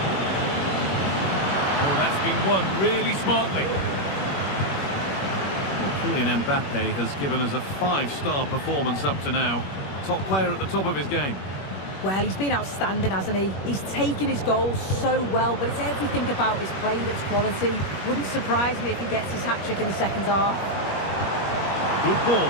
Oh, that's been won really smartly. Kylian Mbappe has given us a 5-star performance up to now. Top player at the top of his game. Well, he's been outstanding, hasn't he? He's taken his goals so well, but it's everything about his play that's quality. Wouldn't surprise me if he gets his hat-trick in the second half. Good ball,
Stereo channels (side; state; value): right; late; 21 ms